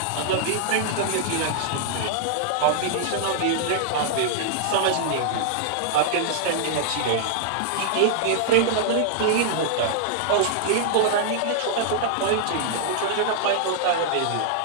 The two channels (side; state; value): both; different; correlation -0.01